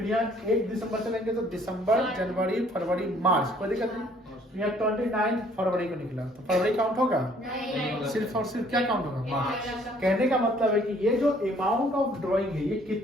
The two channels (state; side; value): normal; both; correlation 0.60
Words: यहाँ 1 दिसंबर चलेंगे तो दिसंबर, जनवरी, फरवरी, मार्च, कोई दिक्कत नहीं। यहाँ 29 फरवरी को निकला तो फरवरी काउंट होगा, सिर्फ और सिर्फ क्या काउंट होगा मार्च। कहने का मतलब है कि ये जो अमाउंट ऑफ ड्राइंग है ये